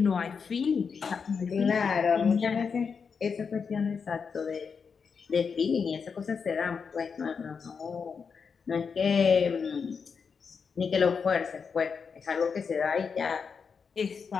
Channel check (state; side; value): quieter; right; 5.8 dB